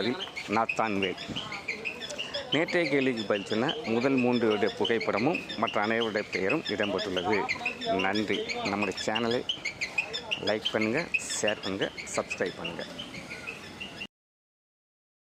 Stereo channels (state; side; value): identical; both; correlation 1.00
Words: நாத்தான்வேல். நேற்றைய கேள்விக்கு பதில் சொன்ன முதல் 3 புகைப்படமும் மற்ற அனைவருடைய பெயரும் இடம்பெற்றுள்ளது. நன்றி. நம்முடைய சேனலை லைக் பண்ணுங்கள், ஷேர் பண்ணுங்கள், சப்ஸ்கிரைப் பண்ணுங்கள்.